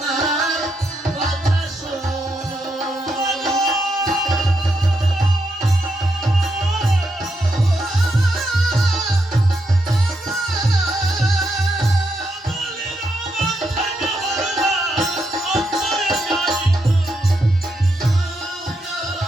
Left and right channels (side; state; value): both; normal; correlation 0.81